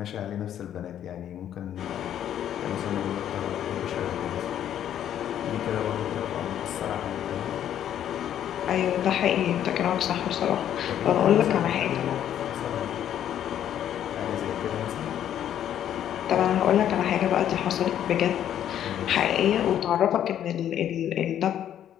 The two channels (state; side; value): quieter; right; 10.5 dB